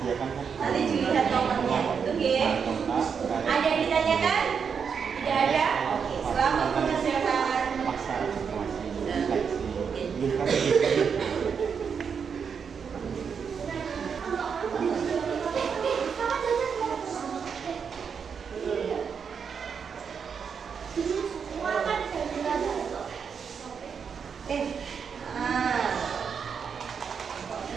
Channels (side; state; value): left; quieter; 6.5 dB